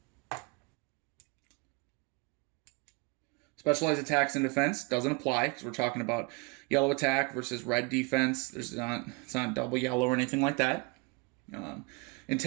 Specialized attacks and defense doesn't apply because we're talking about yellow attack versus red defense. It's not double yellow or anything like that.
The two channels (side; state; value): left; quieter; 29.1 dB